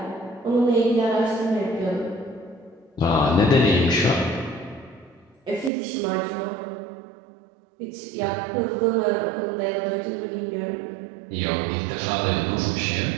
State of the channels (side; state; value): left; drops out; at 5.7 s